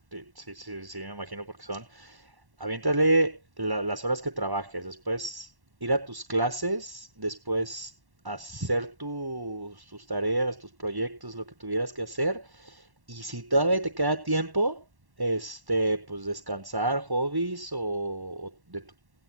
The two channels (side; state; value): left; late; 1.1 ms